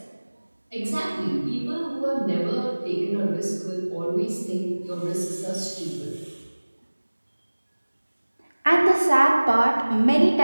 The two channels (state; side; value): inverted; both; correlation -1.00